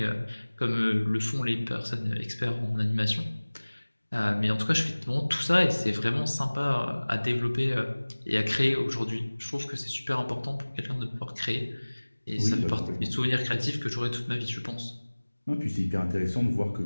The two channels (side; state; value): both; inverted; correlation -1.00